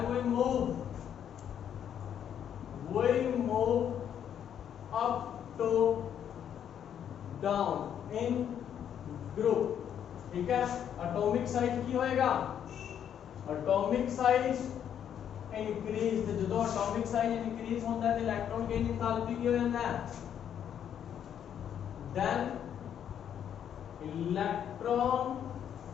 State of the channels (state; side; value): quieter; right; 9.2 dB